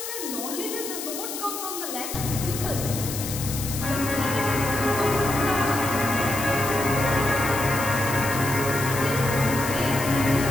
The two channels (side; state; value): left; noise; hiss, 7 dB below the sound